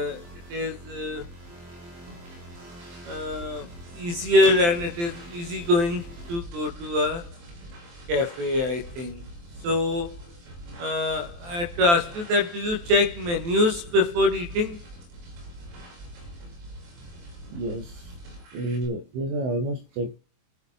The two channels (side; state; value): left; late; 23 ms